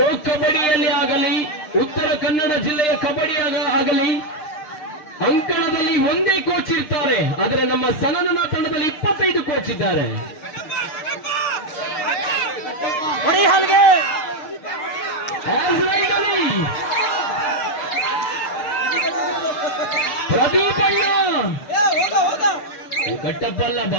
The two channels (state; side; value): late; right; 6.6 ms